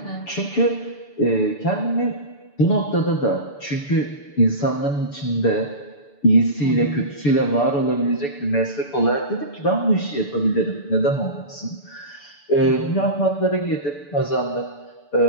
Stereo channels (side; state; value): right; late; 6.9 ms